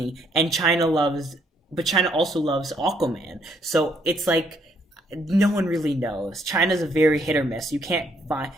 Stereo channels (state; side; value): normal; both; correlation 0.70